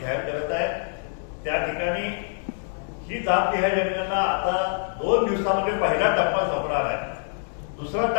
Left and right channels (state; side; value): silent; right; digital silence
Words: करत आहे. त्या ठिकाणी ही जात न्याय जनगणना आता 2 दिवसामध्ये पहिला टप्पा संपणार आहे. दुसरा